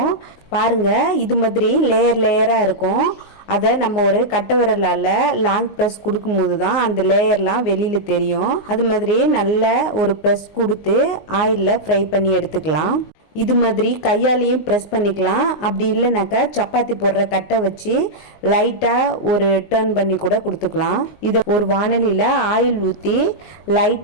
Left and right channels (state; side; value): late; right; 19 ms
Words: பாருங்க இது மாதிரி லேயர் லேயரா இருக்கும். அதை நம்ம ஒரு கட்டை விரலால் லாங் ப்ரெஸ் கொடுக்கும்போது தான் அந்த லேயர்லாம் வெளியில் தெரியும். அது மாதிரி நல்ல ஒரு ப்ரெஸ் கொடுத்து ஆயிலில் ஃப்ரை பண்ணி எடுத்துக்கலாம். இது மாதிரி கையாலையும் ப்ரெஸ் பண்ணிக்கலாம். அப்படி இல்லைனாக்கா சப்பாத்தி போடுற கட்டை வச்சு லைட்டாக ஒரு டர்ன் பண்ணி கூட கொடுத்துக்கலாம். இதை ஒரு வானலியில் ஆயில் ஊற்றி